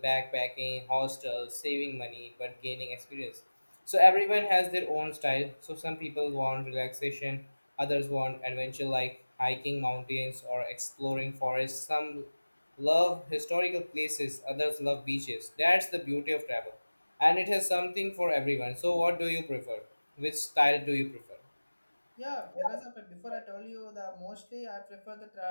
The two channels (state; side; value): inverted; both; correlation -1.00